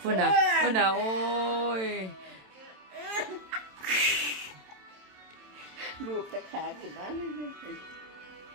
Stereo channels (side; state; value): left; late; 27 ms